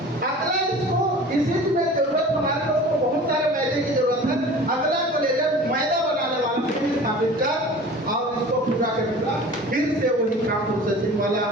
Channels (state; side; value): normal; both; correlation 0.41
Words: अगला इसको इसी में जरूरत, हमारे लोगों को बहुत सारे मैदे की जरूरत है, अगला को लेकर मैदा बनाने वाला फिर स्थापित कर और इसको पूरा करना, फिर से वही काम प्रोसेसिंग वाला,